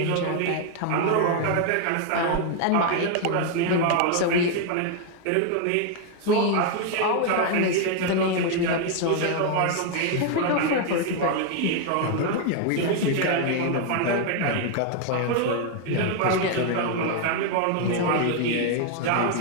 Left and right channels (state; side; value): different; both; correlation 0.01